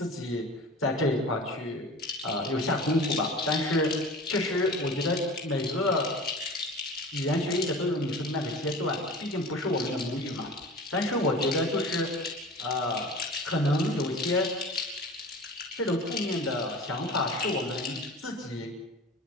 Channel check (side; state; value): both; normal; correlation 0.37